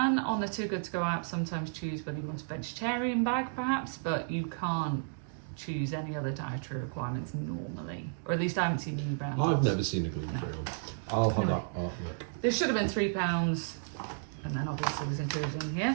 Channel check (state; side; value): silent; left; digital silence